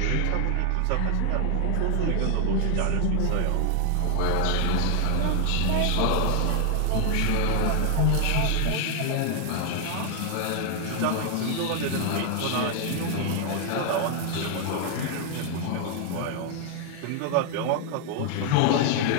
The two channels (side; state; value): both; different; correlation 0.00